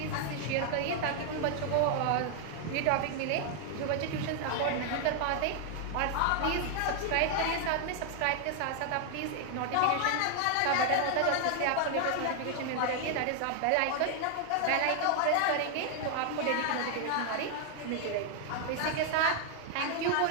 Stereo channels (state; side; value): different; both; correlation 0.00